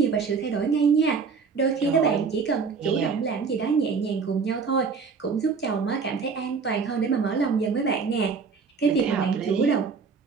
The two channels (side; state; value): left; quieter; 5.3 dB